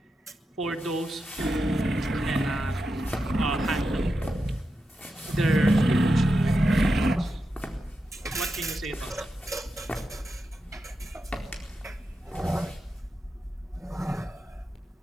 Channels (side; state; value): both; normal; correlation 0.88